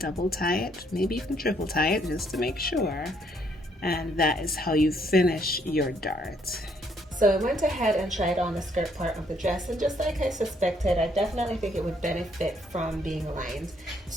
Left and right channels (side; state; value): both; normal; correlation 0.69